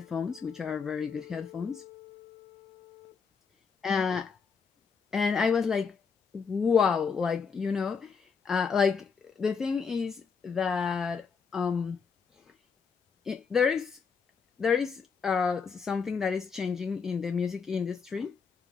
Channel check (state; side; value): quieter; right; 5.7 dB